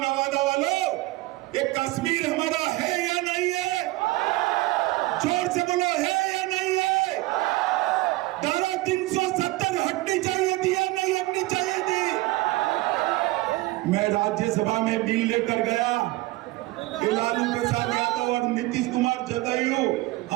वालों, ये कश्मीर हमारा है या नहीं है? जोर से बोलो, है या नहीं है? धारा 370 हटनी चाहिए थी या नहीं हटनी चाहिए थी? मैं राज्यसभा में बिल लेकर गया। लालू प्रसाद यादव और नीतीश कुमार जदयू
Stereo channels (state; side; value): quieter; left; 19.8 dB